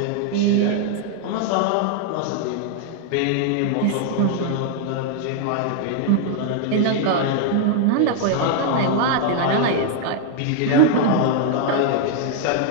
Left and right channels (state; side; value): different; both; correlation 0.00